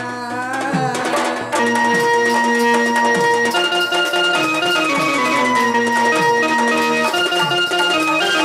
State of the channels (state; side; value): identical; both; correlation 1.00